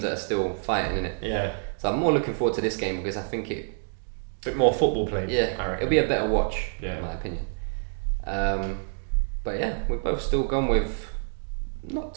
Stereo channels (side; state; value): left; silent; digital silence